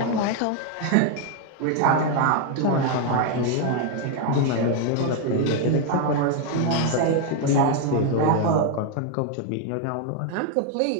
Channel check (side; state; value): both; different; correlation 0.01